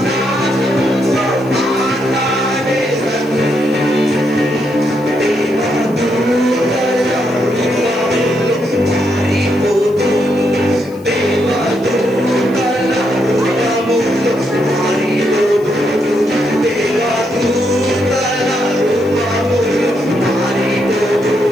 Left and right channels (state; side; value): noise; left; hiss, 27 dB below the sound